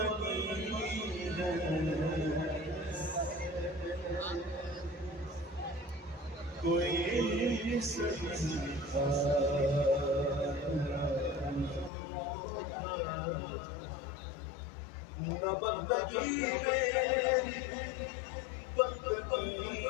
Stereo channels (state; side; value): drops out; right; at 11.9 s